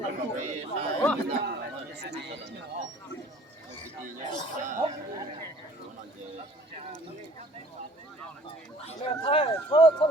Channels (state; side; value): normal; both; correlation 0.53